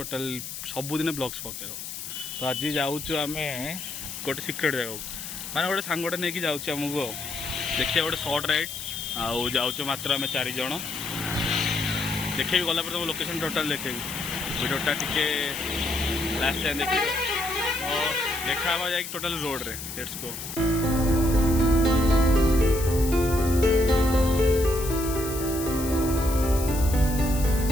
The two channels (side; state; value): left; noise; hiss, 8 dB below the sound